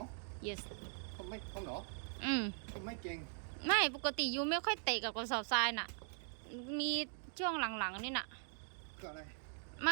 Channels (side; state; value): left; silent; 50 dB below the other